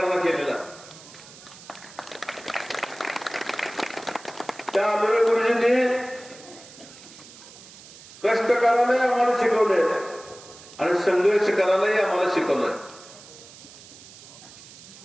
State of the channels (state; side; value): noise; right; hiss, 19 dB below the sound